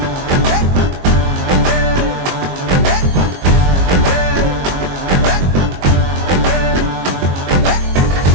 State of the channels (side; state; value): left; late; 22 ms